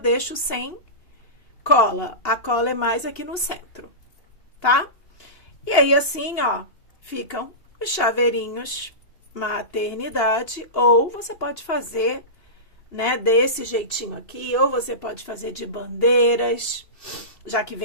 sem cola. A cola é mais aqui no centro, tá? E aí, assim, ó, ficam os chaveirinhos maternidade. Ou você pode fazer, né, desse jeitinho aqui. Ou você pode fazer de bandeiras, já que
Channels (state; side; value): late; right; 2.8 ms